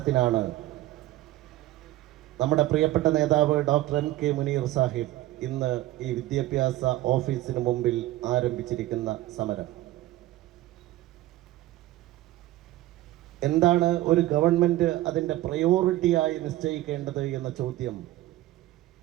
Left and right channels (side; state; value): left; quieter; 16.1 dB